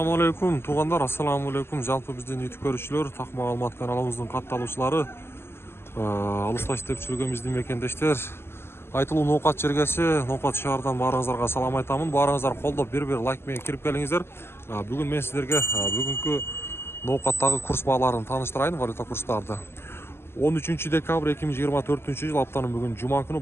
алейкум, туғандар, ассаламу алейкум. Жалпы бізден YouTube көрушілер, так маалымат каналымыздың катталуучулары, алыста иштеп жүргөн биздин мекендештер, айтылуу ноокат жергеси, ноокат шаарынан баарыңыздарга салам айтамын. Баарыңыздар колдоп бир лайк менен кирип келиңиздер. Бүгүн мен сиздерге бүгүнкү ноокаттагы курс бааларын тааныштырайын, валюта курстарды. 13 декабрь 2024 жыл аптанын бүгүн жума күнү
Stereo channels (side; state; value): right; late; 0.12 ms